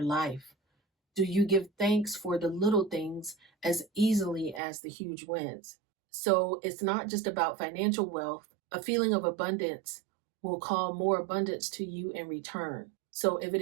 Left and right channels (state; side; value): drops out; left; at 4.6 s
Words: life? Do you give thanks for the little things as easily as the huge wins? So, it's not just about financial wealth. A feeling of abundance will call more abundance to you in return. So, if